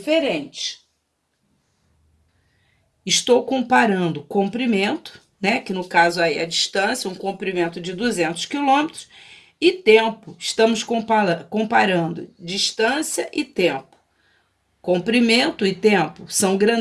Estou comparando comprimento, né, que no caso aí é a distância, um comprimento de 200 quilômetros, e tempo. Estamos comparando distância e tempo. Comprimento e tempo são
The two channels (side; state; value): both; identical; correlation 1.00